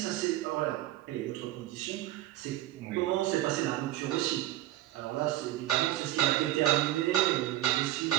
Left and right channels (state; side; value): quieter; left; 14.9 dB